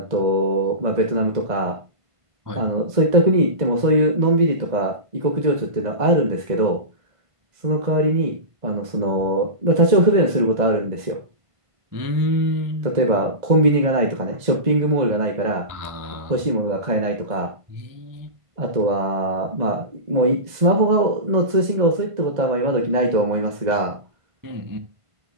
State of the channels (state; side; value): late; left; 1.5 ms